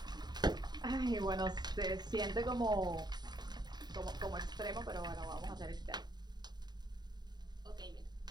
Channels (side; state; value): left; late; 0.20 ms